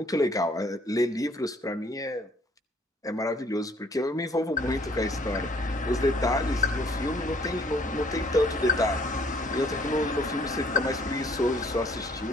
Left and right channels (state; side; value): normal; both; correlation 0.61